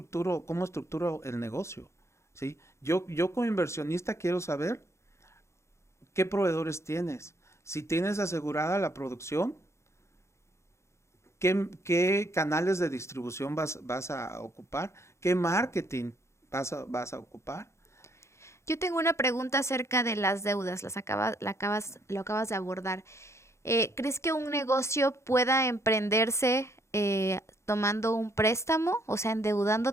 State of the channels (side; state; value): right; late; 0.13 ms